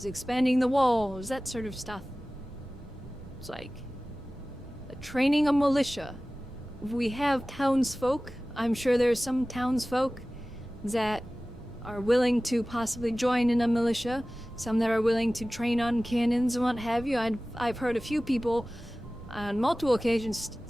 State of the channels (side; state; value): both; normal; correlation 0.97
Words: expanding the walls, that sort of stuff. It's like training a militia. We have townsfolk. I'm sure there's some townsfolk that are willing to possibly join in a militia. Some that are willing to train on cannons and what have you. I've heard a few people on multiple occasions